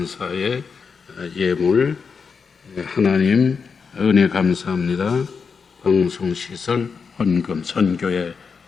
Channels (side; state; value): right; quieter; 5.6 dB